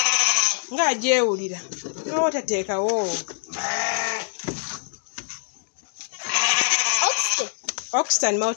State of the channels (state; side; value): silent; right; digital silence